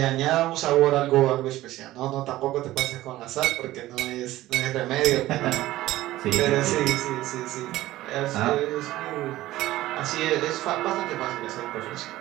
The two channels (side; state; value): left; quieter; 16.0 dB